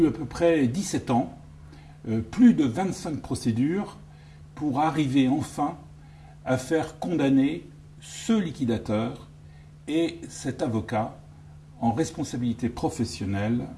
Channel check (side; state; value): both; identical; correlation 1.00